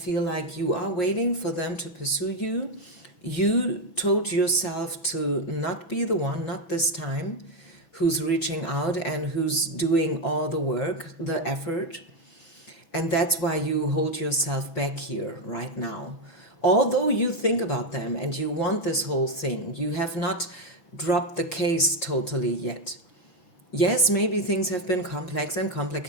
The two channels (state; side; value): late; right; 6.0 ms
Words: like you are waiting for them to pursue you. You told yourself to not be the one, not this time, who's reaching out and who's doing all the work, the effort. And that's why you hold yourself back here right now. Although you think about them and you want this whole thing, you have not dropped the case totally yet. Yes, maybe things have been complex and